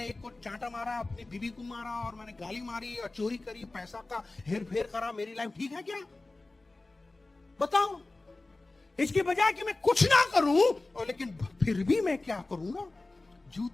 एक को चांटा मारा, अपनी बीवी को मारा, और मैंने गाली मारी और चोरी करी, पैसा का हेर फेर करा, मेरी लाइफ ठीक है क्या? बताओ। इसके बजाय कि मैं कुछ ना करूं, और लेकिन फिर भी मैं क्या करूंगा,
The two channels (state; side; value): quieter; right; 3.1 dB